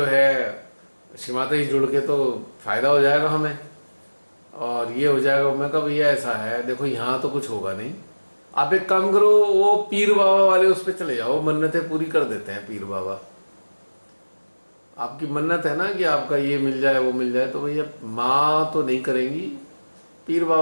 है श्रीमाता जी जुड़ के तो फायदा हो जाएगा हमें और ये हो जाएगा, मैं कहा भैया ऐसा है, देखो यहाँ तो कुछ होगा नहीं, आप एक काम करो, वो पीर बाबा वाले उस पर चले जाओ, मन्नतें पूरी कर देते हैं पीर बाबा। आपकी मन्नत है ना कि आपका ये मिल जाए वो मिल जाए, तो भैया माँ तो नहीं करेंगी, पीर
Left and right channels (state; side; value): inverted; both; correlation -1.00